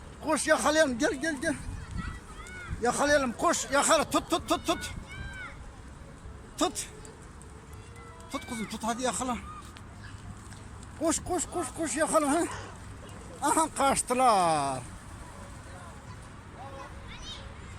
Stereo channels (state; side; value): identical; both; correlation 1.00